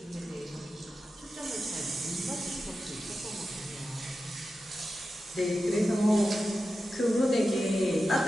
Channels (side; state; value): both; normal; correlation 0.91